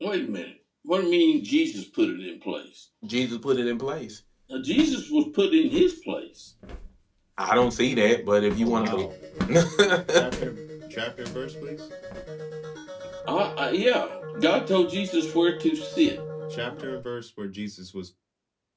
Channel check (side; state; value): both; identical; correlation 1.00